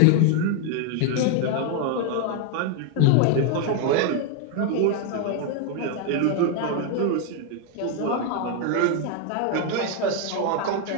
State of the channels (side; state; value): both; different; correlation 0.01